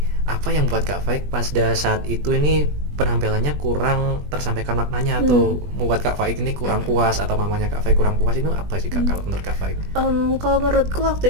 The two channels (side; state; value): left; late; 20 ms